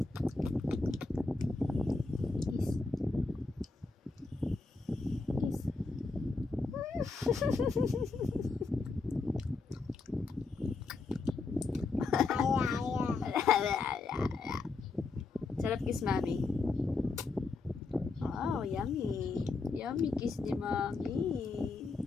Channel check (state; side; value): quieter; right; 3.9 dB